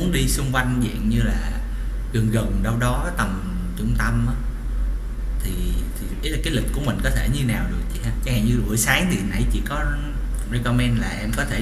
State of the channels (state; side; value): identical; both; correlation 1.00